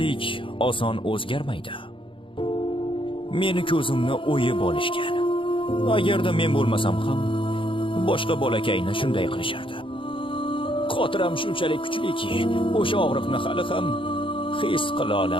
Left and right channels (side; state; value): right; late; 0.25 ms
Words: oson o'zgarmaydi. Meni ko'zimni o'yib olishgan. Agarda men bo'lmasam ham, boshqa bolakayni shunday qilishardi. Xotiram shunchalik kuchliki, o'sha og'riqni hali ham his qila